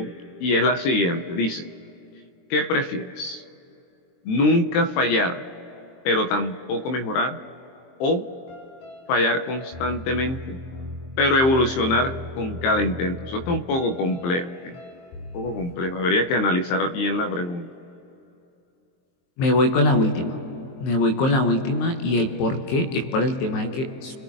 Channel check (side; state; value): right; late; 23 ms